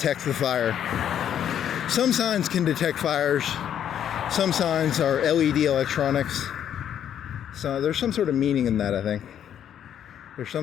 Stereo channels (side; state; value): right; quieter; 9.7 dB